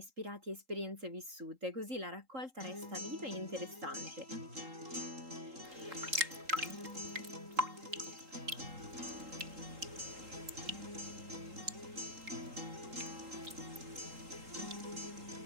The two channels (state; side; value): late; left; 3.8 ms